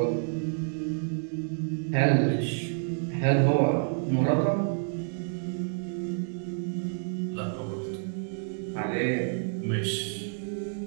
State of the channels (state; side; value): silent; left; digital silence